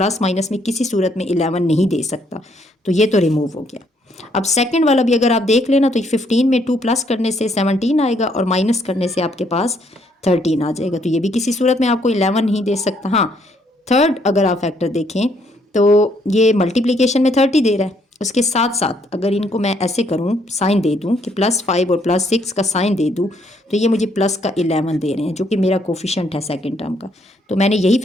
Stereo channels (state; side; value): normal; both; correlation 0.70